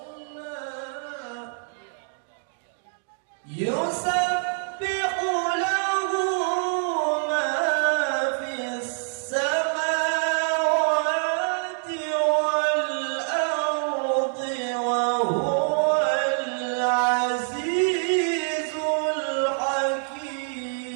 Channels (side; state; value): left; silent; digital silence